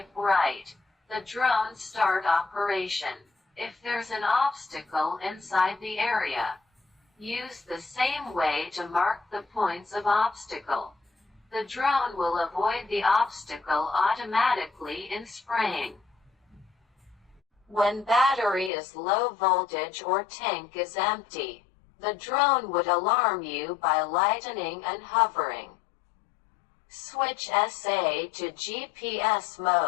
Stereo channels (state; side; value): drops out; right; at 18.7 s